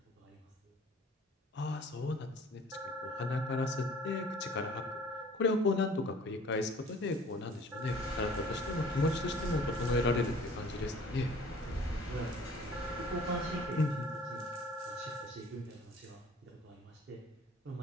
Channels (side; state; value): both; normal; correlation 0.51